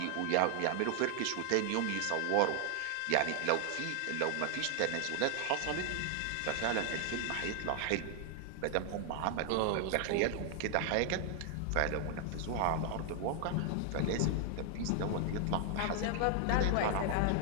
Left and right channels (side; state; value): both; different; correlation 0.00